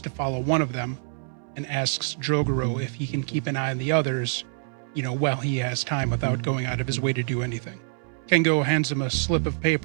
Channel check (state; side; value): silent; left; 61 dB below the other